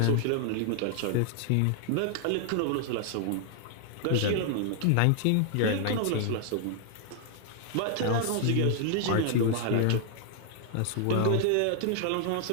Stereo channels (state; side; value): different; both; correlation 0.00